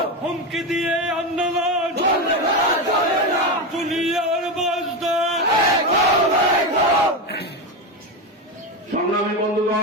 হুমকি দিয়ে আন্দোলন দুনিয়ার বাসদা। সংগ্রামী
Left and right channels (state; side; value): normal; both; correlation 0.15